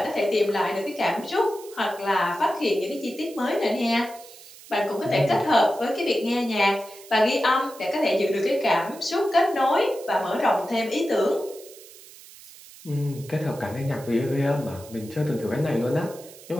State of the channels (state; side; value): noise; right; hiss, 19 dB below the sound